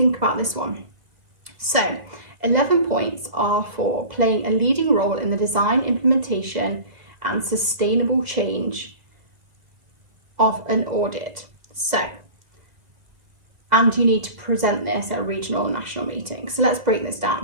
about this one. So 11 points are for playing a leading role in the design, implementation, and sustainable change of an audit. So, and you need to present this at a regional and national meeting. So let's break this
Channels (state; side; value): late; left; 1.9 ms